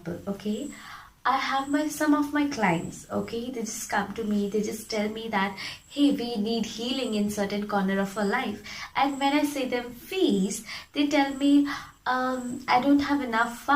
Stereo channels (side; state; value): both; identical; correlation 1.00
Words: Okay, I have some of my clients. Okay, they just come to me, they just tell me that, hey, we need healing in certain corner of our life. And when I say them fees, they tell me, I don't have enough